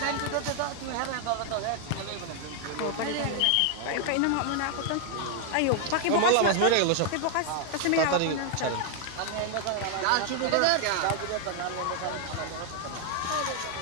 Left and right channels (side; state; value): both; different; correlation 0.00